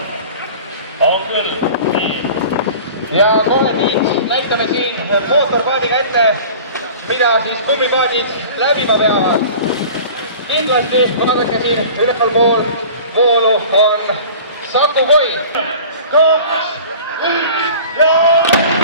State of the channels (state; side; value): inverted; both; correlation -0.41